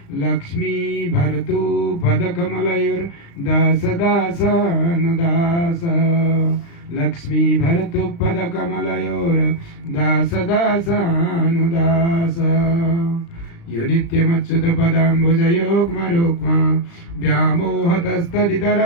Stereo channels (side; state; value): right; late; 36 ms